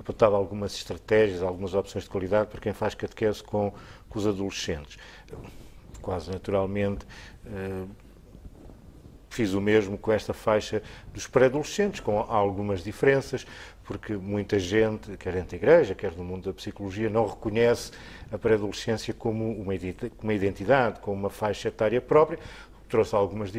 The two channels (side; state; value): both; identical; correlation 1.00